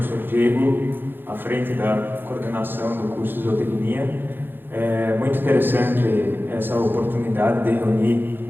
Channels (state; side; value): late; left; 0.099 ms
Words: Diego, à frente da coordenação do curso de zootecnia. É muito interessante essa oportunidade de reunir